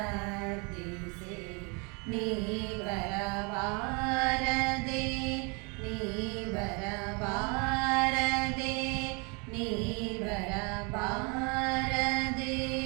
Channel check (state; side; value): quieter; left; 32.1 dB